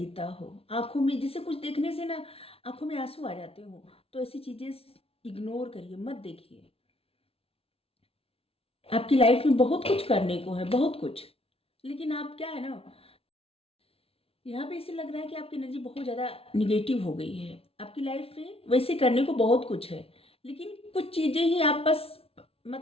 हो, आँखों में जैसे कुछ देखने से ना आँखों में आँसू आ जाते हो, तो ऐसी चीज़ें इग्नोर करिए, मत देखिए। आपकी लाइफ में बहुत कुछ करने को है, बहुत कुछ। लेकिन आप क्या है ना, यहाँ पे ऐसे लग रहा है कि आपकी एनर्जी बहुत ज़्यादा नेगेटिव हो गई है। आपकी लाइफ में वैसे करने को बहुत कुछ है, लेकिन कुछ चीज़ें ही आप बस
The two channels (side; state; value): right; late; 0.27 ms